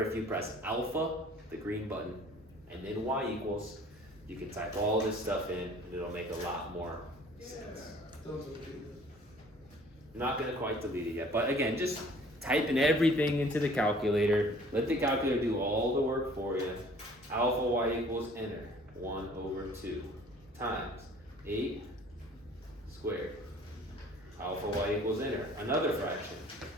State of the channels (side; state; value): both; normal; correlation 0.52